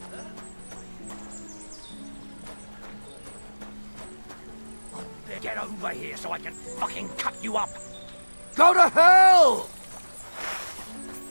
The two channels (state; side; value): inverted; both; correlation -1.00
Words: Get over here so I can fucking cut you up. Go to hell!